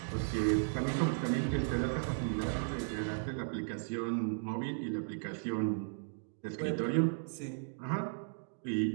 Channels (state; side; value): silent; left; digital silence